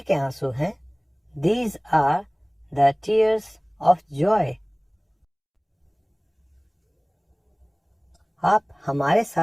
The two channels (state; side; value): identical; both; correlation 1.00